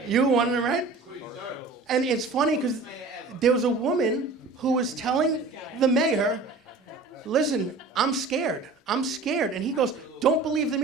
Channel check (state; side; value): quieter; left; 3.8 dB